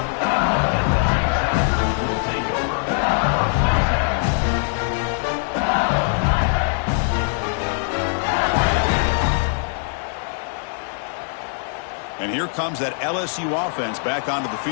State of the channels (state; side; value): silent; right; 64 dB below the other